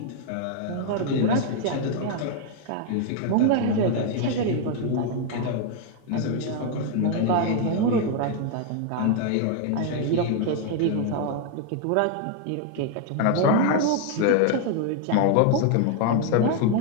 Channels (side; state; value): both; different; correlation 0.00